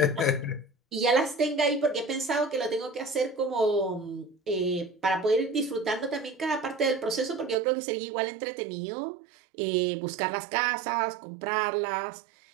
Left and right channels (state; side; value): drops out; left; at 7.6 s